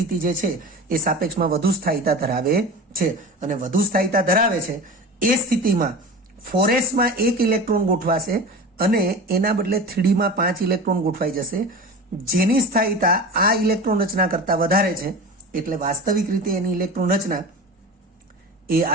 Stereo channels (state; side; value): normal; both; correlation 0.32